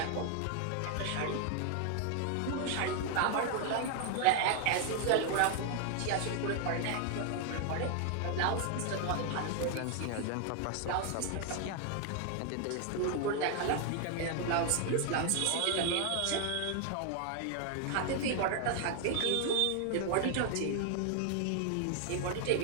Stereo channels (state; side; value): different; both; correlation 0.00